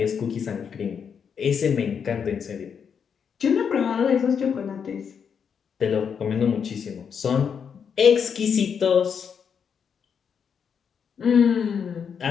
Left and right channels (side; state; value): right; quieter; 7.0 dB